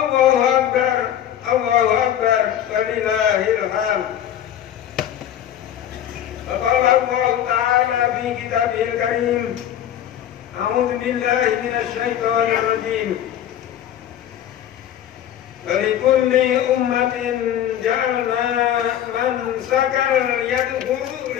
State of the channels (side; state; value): right; quieter; 10.8 dB